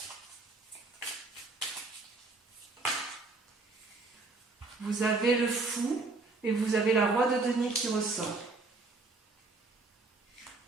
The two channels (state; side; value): quieter; left; 3.6 dB